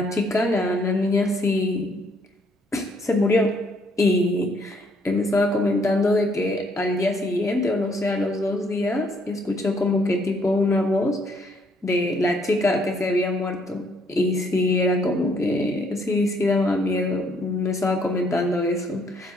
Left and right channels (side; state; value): both; normal; correlation 0.68